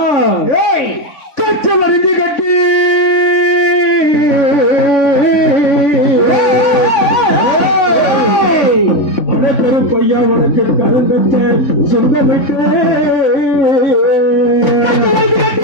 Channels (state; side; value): late; right; 3.5 ms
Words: கச்சல் அறிஞ்சு கட்டி கருப்பையா உனக்கு கருந்தச்ச சொந்தமிட்டு